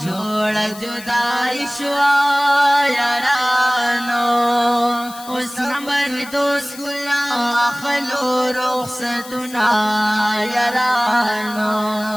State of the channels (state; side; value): noise; left; hiss, 16 dB below the sound